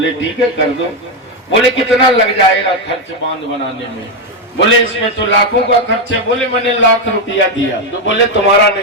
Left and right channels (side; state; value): both; normal; correlation 0.05